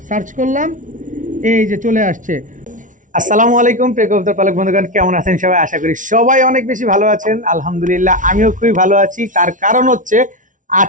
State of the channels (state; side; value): late; left; 0.37 ms